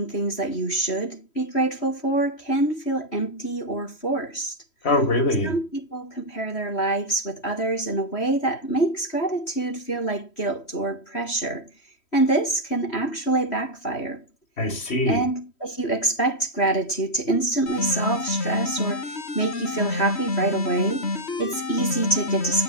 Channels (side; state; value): right; late; 3.1 ms